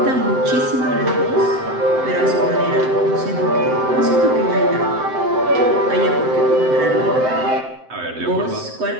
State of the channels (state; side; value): late; left; 7.7 ms